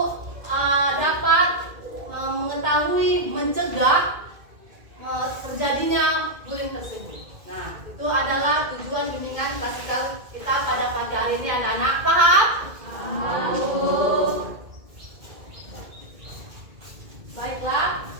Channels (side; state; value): left; late; 2.2 ms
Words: dapat mengetahui, mencegah terjadinya bullying tersebut. Nah, itu adalah tujuan bimbingan klasikal kita pada pagi hari ini, anak-anak. Paham? Baiklah,